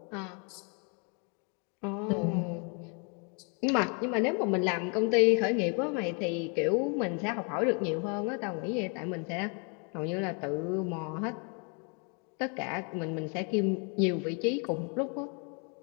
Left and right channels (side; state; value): right; quieter; 37.1 dB